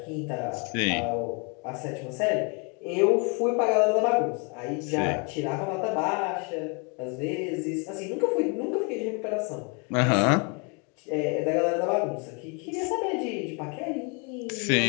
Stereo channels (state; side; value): quieter; right; 34.6 dB